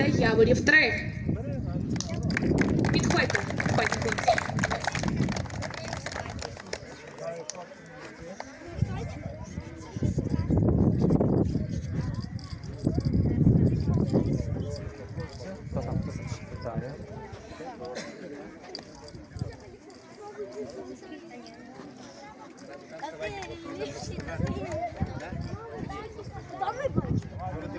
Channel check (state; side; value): identical; both; correlation 1.00